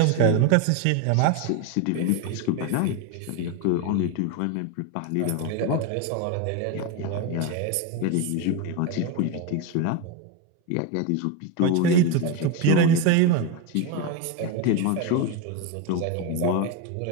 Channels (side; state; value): both; different; correlation 0.03